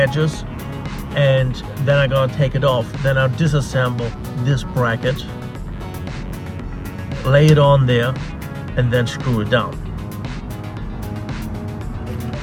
and then I'm gonna take it off. Then I'll disassemble this bracket, lay it on there, and then screw it down.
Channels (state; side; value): identical; both; correlation 1.00